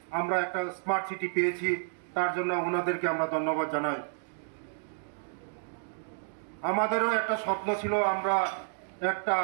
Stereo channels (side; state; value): left; silent; digital silence